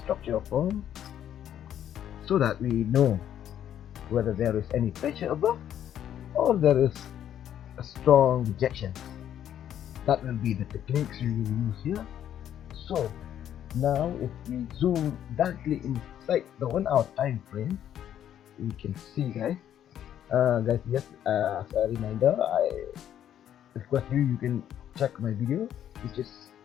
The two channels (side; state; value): right; quieter; 10.4 dB